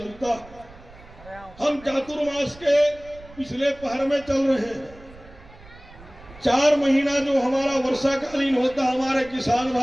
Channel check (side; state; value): right; noise; rumble, 21 dB below the sound